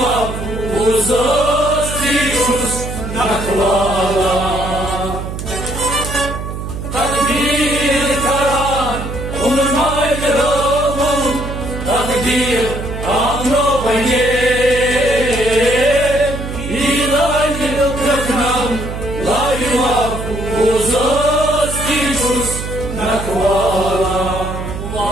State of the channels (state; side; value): noise; right; hum, 7 dB below the sound